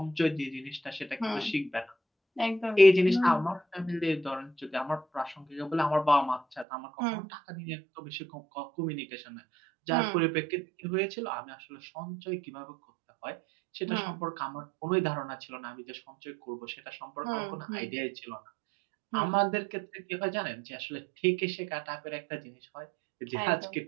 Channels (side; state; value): left; drops out; at 6.7 s